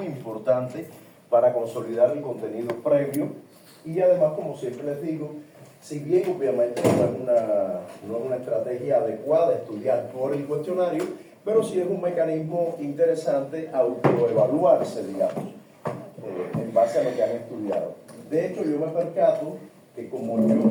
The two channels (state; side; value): identical; both; correlation 1.00